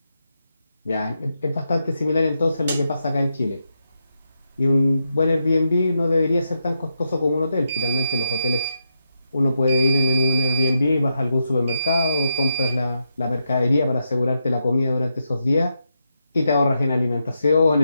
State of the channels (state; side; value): inverted; both; correlation -0.84